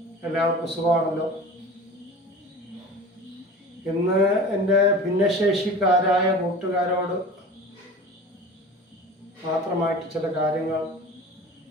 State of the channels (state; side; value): normal; both; correlation 0.37